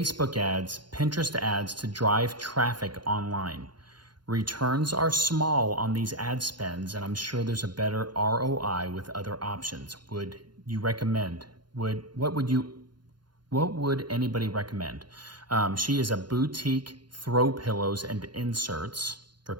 ads, Pinterest ads to drive traffic online. Returns are small on these ad spends, and I'm sure there's a better ROI with other options. Would you recommend? What would anybody recommend? She is a boutique throw pillows and inserts for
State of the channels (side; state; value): left; late; 0.71 ms